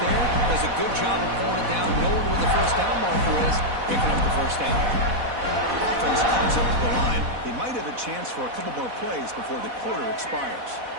there, does a good job of pulling it down, knowing where the first down marker is, picking up the first down. Offense comes up to the line. They might have a chance for a couple more plays before the quarter expires.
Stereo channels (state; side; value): late; left; 4.1 ms